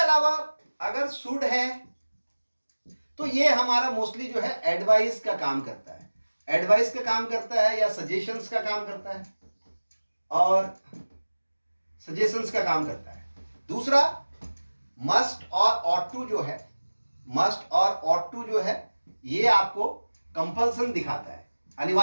अगर शुड है तो ये हमारा मोस्टली जो है एडवाइस का काम करता है। एडवाइस का काम करता है या सजेशंस का काम करता है, और सजेशंस का काम करता है। दूसरा मस्ट और ऑट टू जो है, मस्ट और ऑट टू जो है ये आपको कंपल्सन दिखाता है,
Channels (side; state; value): both; inverted; correlation -1.00